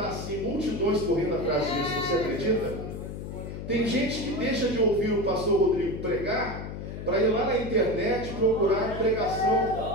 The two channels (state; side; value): noise; left; hum, 8 dB below the sound